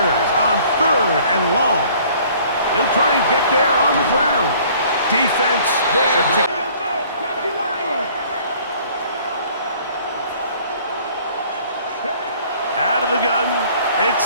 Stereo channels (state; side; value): inverted; both; correlation -0.55